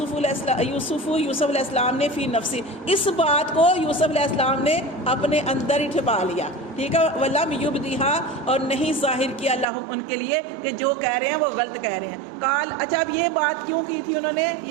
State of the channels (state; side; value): drops out; left; at 9.7 s